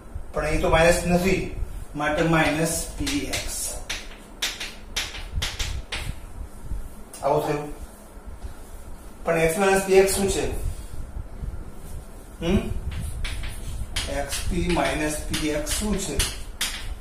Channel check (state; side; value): identical; both; correlation 1.00